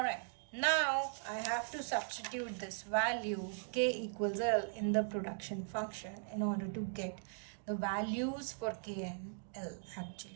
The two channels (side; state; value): left; silent; digital silence